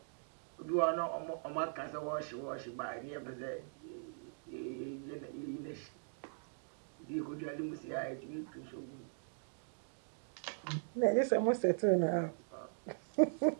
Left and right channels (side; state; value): left; silent; digital silence